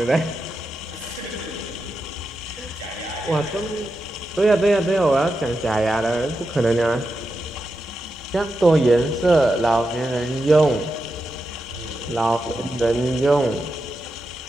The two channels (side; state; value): both; normal; correlation 0.88